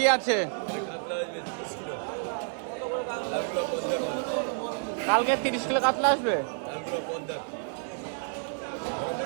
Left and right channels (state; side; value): silent; left; 58 dB below the other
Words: আছে কাতলা আসবে 30 কিলো লালগুলো পদ্মার মাল কালকে 30 কিলো কাতলা আসবে লালগুলো পদ্মার